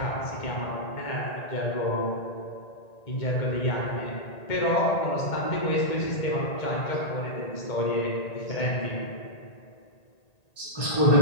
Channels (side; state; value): right; late; 1.8 ms